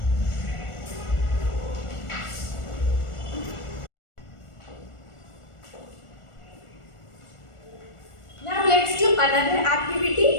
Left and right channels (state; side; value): late; right; 1.4 ms